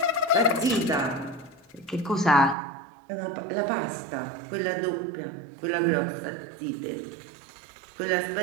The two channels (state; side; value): drops out; left; at 2.6 s